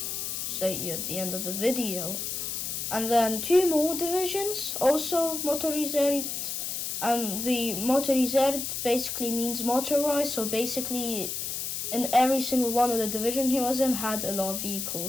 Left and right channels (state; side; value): noise; left; hiss, 4 dB below the sound